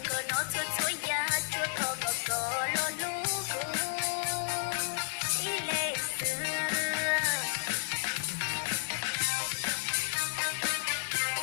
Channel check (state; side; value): silent; right; digital silence